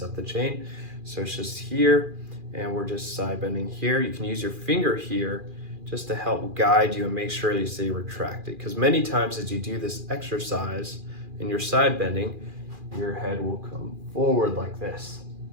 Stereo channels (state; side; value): late; left; 2.4 ms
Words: of the chain. So it's just here and we're just side bending here. You can use your finger here just to help guide you and make sure that you stay retracted, because many times as you do this exercise and you're side bending, your head will come forward like this.